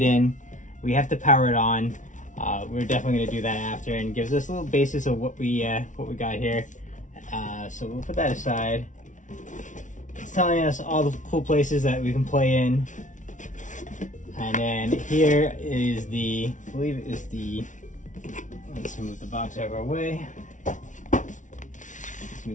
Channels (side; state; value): right; late; 0.37 ms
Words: in. We have to power it on. We're definitely gonna do that after, and gives us a little basis of what we got here. So we'll put that aside. It's telling us all the cool places that we can play in. And then here is the, I believe it is the, let's move the box out of our way. Let's